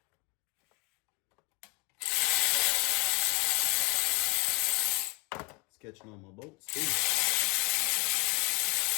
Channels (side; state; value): right; quieter; 27.8 dB